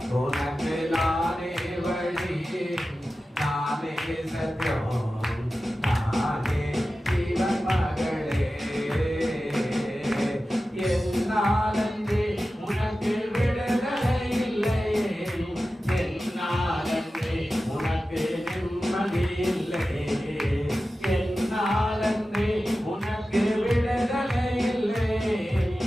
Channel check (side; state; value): both; normal; correlation 0.94